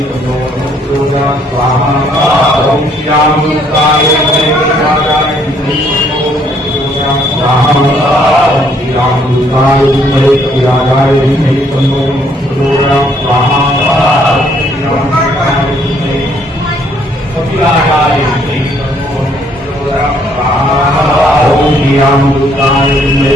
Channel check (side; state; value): both; normal; correlation 0.66